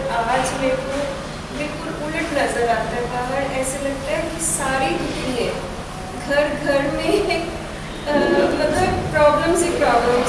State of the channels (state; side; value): identical; both; correlation 1.00